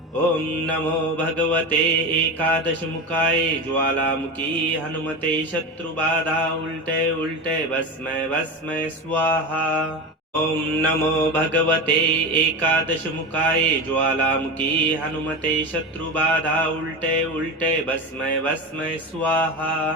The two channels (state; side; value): normal; both; correlation 0.23